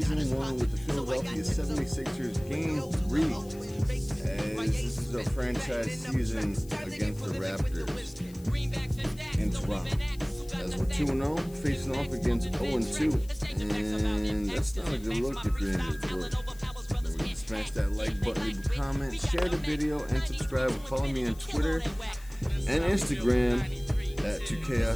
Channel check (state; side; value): noise; left; hiss, 22 dB below the sound